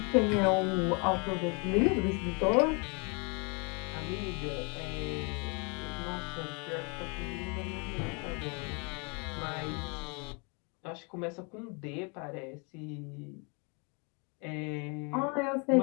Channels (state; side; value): quieter; right; 33.6 dB